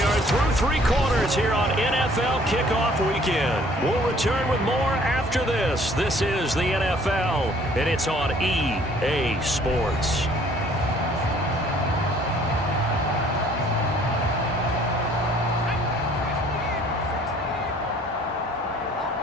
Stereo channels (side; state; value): both; normal; correlation 0.57